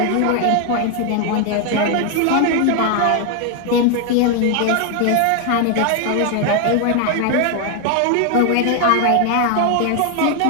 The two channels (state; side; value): different; both; correlation 0.01